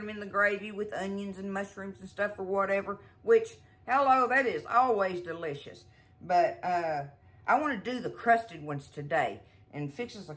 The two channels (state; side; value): identical; both; correlation 1.00